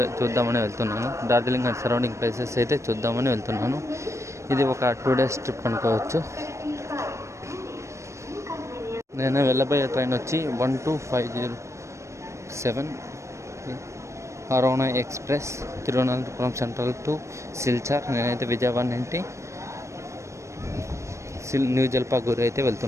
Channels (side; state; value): left; late; 0.14 ms